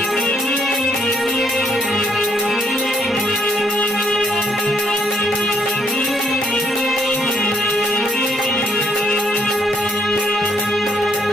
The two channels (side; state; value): both; normal; correlation 0.70